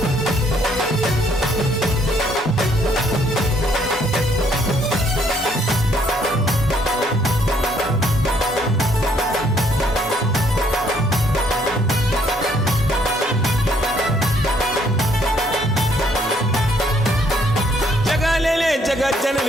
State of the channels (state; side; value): normal; both; correlation 0.67